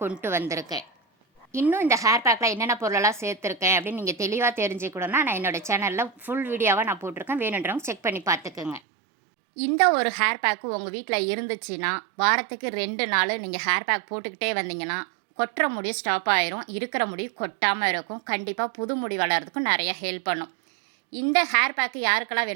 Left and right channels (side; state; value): left; drops out; at 8.8 s